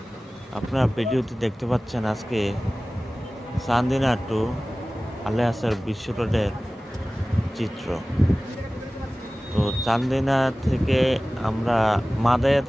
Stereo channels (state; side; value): normal; both; correlation 0.97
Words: আপনারা ভিডিওতে দেখতে পাচ্ছেন আজকে চান্দিনা টু আলিয়াসের বিশ্ব রোডের চিত্র। তো চান্দিনা থেকে মাদায়া